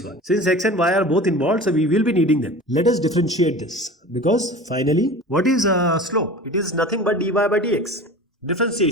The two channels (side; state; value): both; normal; correlation 0.37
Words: 1. Since x and y are both involved, so we will be needing them. Let us differentiate this because finally, what is slope? It is nothing but dy by dx.